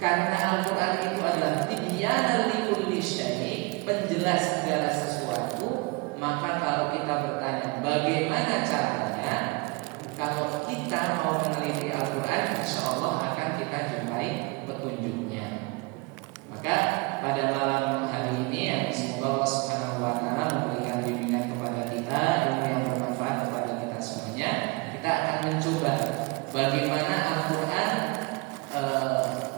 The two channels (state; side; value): quieter; left; 27.4 dB